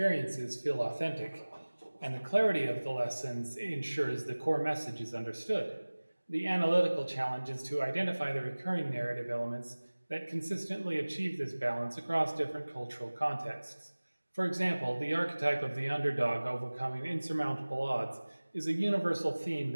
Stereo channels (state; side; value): inverted; both; correlation -1.00